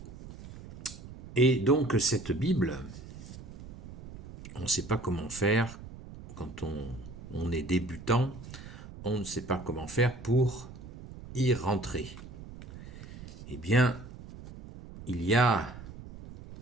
Et donc cette Bible, on ne sait pas comment faire quand on est débutant, on ne sait pas comment faire pour y rentrer. Eh bien, il y a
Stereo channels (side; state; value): right; noise; rumble, 14 dB below the sound